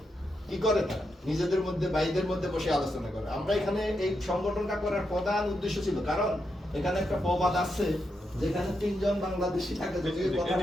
কি করে, তারা নিজেদের মধ্যে ভাইদের মধ্যে বসে আলোচনা করে। আমরা এখানে এই সংগঠনটা করার প্রধান উদ্দেশ্য ছিল, কারণ এখানে একটা প্রবাদ আছে, যেখানে তিনজন বাংলাদেশি থাকে, যদি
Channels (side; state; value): both; normal; correlation 0.84